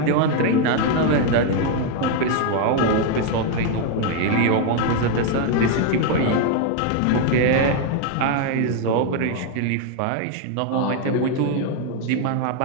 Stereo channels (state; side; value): different; both; correlation 0.01